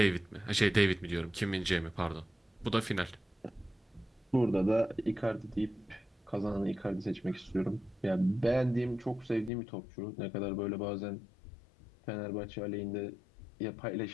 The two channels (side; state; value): right; drops out; at 9.5 s